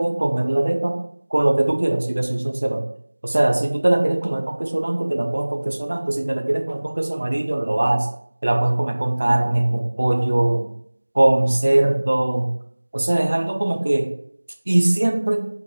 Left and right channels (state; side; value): inverted; both; correlation -1.00